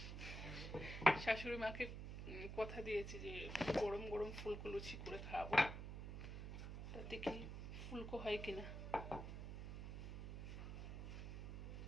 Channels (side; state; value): right; noise; hum, 6 dB below the sound